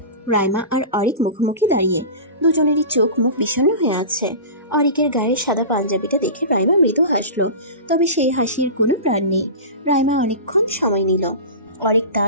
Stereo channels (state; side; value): inverted; both; correlation -0.31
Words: রাইমা আর অরিক মুখোমুখি দাঁড়িয়ে, দুজনেরই চোখ মুখ বিষণ্ণ হয়ে আছে। অরিকের গায়ে সাদা পাঞ্জাবিটা দেখে রাইমা মৃদু হাসলো, তবে সেই হাসির কোনো প্রাণ নেই। রাইমা অনেকক্ষণ সময় নিল। অরিক